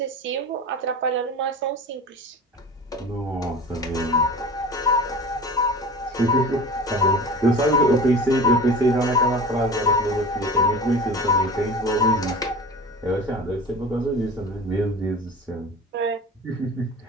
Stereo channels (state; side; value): normal; both; correlation 0.35